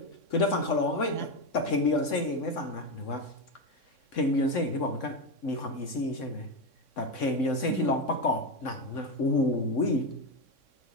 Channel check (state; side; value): late; right; 3.6 ms